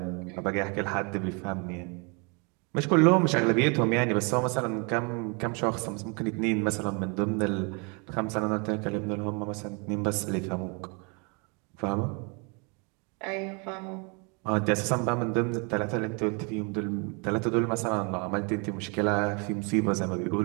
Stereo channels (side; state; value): left; quieter; 33.0 dB